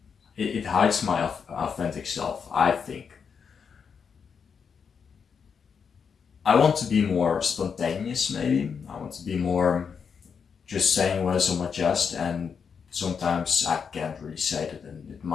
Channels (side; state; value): right; quieter; 6.4 dB